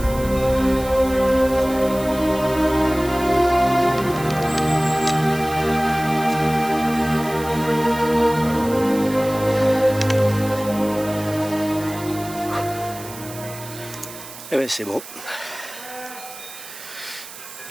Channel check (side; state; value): right; noise; hiss, 14 dB below the sound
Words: Eh bien c'est bon.